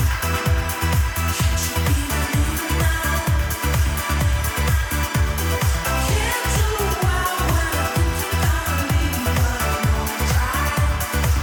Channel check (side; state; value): both; identical; correlation 1.00